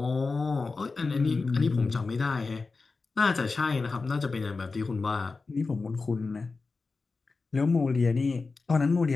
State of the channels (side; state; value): right; quieter; 4.1 dB